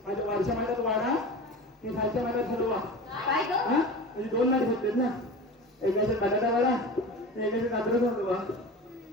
माझ्या वरच्या महिन्यात वाडा मी खालच्या महिन्यात ठरवा म्हणजे 2 नाट घेतलेत ना एकाचे बटाटा वाडा एकाचे कात्रच होतो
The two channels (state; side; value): normal; both; correlation 0.33